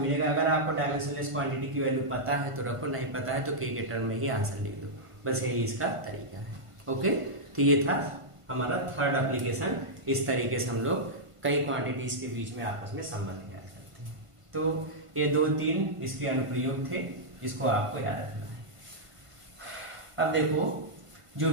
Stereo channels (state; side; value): late; left; 1.5 ms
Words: अगर आपको डायमेंशनलेस क्वांटिटी की वैल्यू पता है तो रखो, नहीं पता है तो k के टर्म में ही आंसर लिख दो, बस यही इसका तरीका है। ओके, तो ये था हमारा थर्ड एप्लीकेशन। इस तरीके से हम लोग कई क्वांटिटीज के बीच में आपस में संबंध ज्ञात करते हैं। तो ये 2-3 इसके अनुप्रयोग थे, इसको आपको याद रखना है। अब देखो, जो